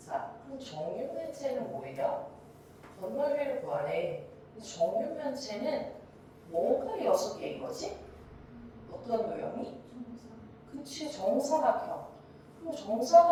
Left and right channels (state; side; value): identical; both; correlation 1.00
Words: 그럼 정육면체는 뭐예요? 겉넓이를 구하래. 정육면체는 뭐가 6개인 거지? 어떤 모형이? 그치, 정사각형. 그럼